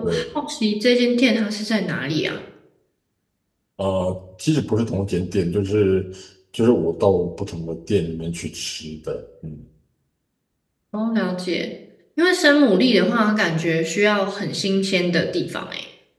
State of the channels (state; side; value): identical; both; correlation 1.00